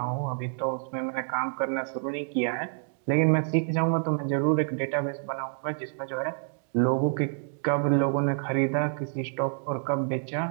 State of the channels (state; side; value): silent; left; 59 dB below the other